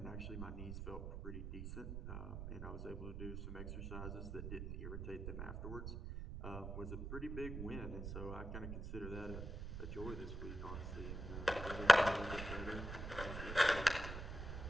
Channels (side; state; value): right; noise; rumble, 5 dB below the sound